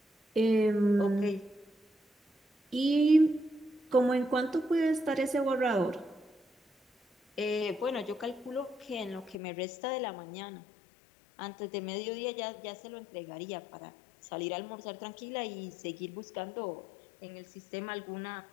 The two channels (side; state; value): right; drops out; at 9.3 s